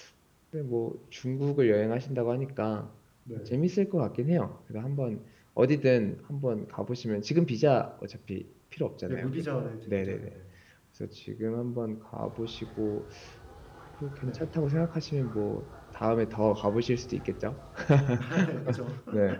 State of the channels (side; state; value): both; identical; correlation 1.00